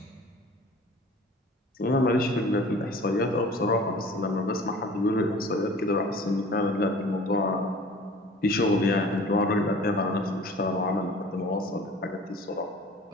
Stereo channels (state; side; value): normal; both; correlation 0.45